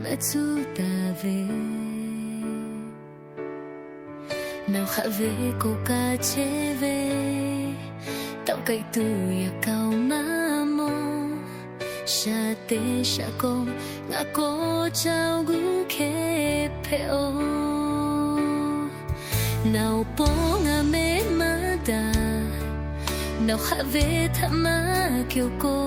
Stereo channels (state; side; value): identical; both; correlation 1.00